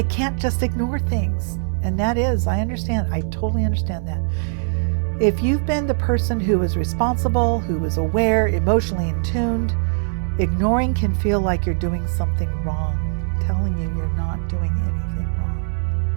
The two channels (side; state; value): left; silent; 65 dB below the other